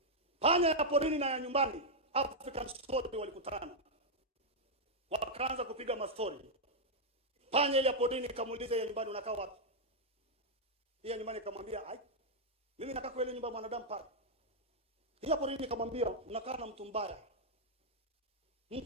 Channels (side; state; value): both; normal; correlation -0.04